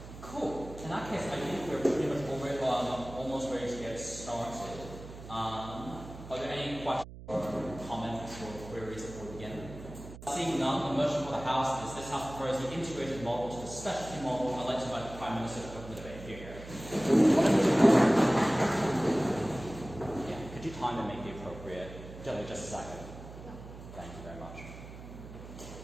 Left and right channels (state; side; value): noise; right; hum, 14 dB below the sound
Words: Cool. In that case, I think we're pretty much almost ready to get started. Are there any questions or comments or queries before we begin? Seeing none, the motion for the House is this House prefers the integrated model to the specialty model. I'd like to invite the Prime Minister to open the debate here. Yeah, could you time and make the appropriate? Just a second. Thank you very much.